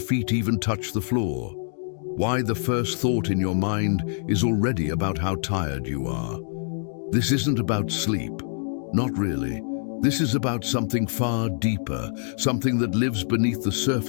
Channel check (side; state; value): right; silent; digital silence